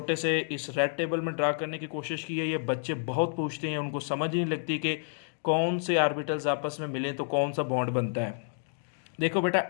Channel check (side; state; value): right; silent; digital silence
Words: से इस रेड टेबल में ड्रा करने की कोशिश की है। ये बच्चे बहुत पूछते हैं, उनको समझ ही नहीं लगती कि कौन से आर्बिटल्स आपस में मिले तो कौन सा बॉन्ड बनता है। देखो बेटा,